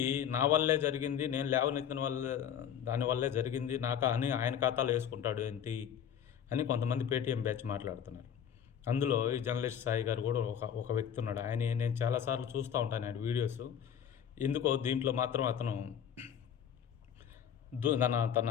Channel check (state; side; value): quieter; right; 8.9 dB